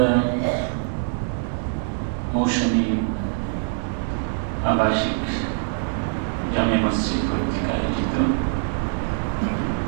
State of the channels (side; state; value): left; silent; 63 dB below the other